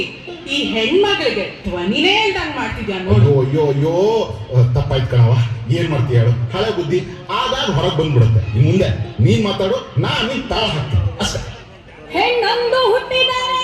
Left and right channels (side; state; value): both; identical; correlation 1.00